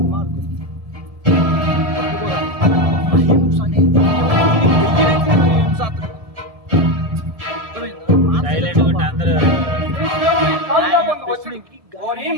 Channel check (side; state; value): left; late; 1.7 ms